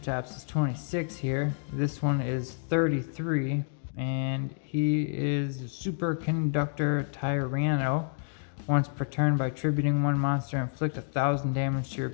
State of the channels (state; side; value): silent; right; digital silence